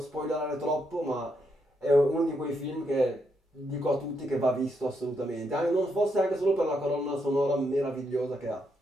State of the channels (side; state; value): both; normal; correlation 0.79